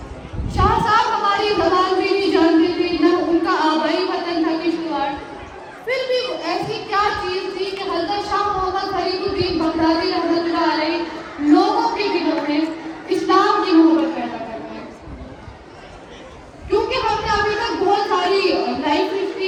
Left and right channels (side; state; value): both; identical; correlation 1.00